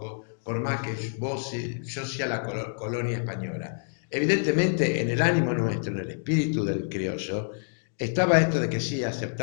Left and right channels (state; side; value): silent; right; digital silence